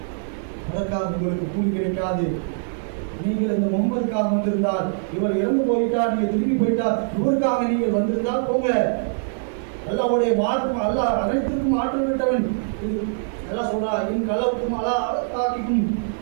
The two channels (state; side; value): silent; left; digital silence